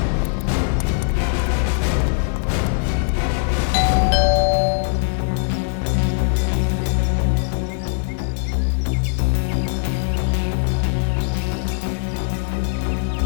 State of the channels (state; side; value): silent; right; digital silence